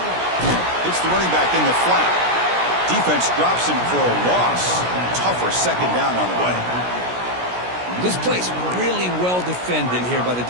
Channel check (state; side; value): late; left; 17 ms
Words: It's the running back in the flat. Defense drops him for a loss. Tougher second down on the way. This play's really well defended here by the